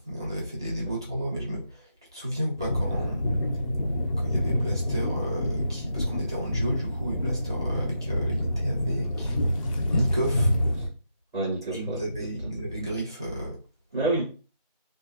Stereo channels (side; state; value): both; inverted; correlation -0.82